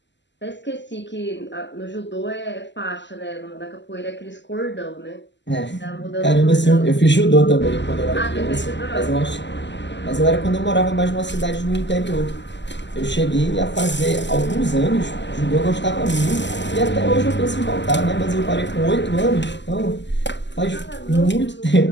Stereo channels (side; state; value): right; late; 0.52 ms